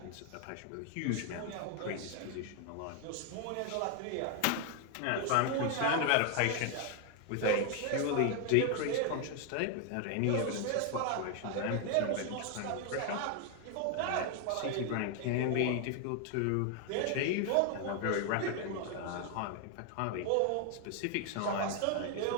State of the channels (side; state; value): both; different; correlation 0.01